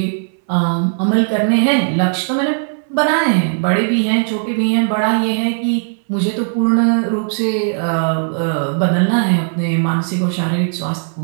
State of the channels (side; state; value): left; silent; 65 dB below the other